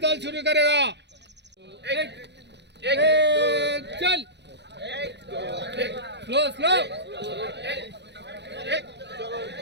ताल शुरू करेगा. एक चल. Slow slow. एक दो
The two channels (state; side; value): late; left; 0.50 ms